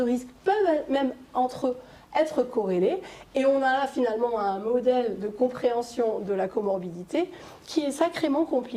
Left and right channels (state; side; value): identical; both; correlation 1.00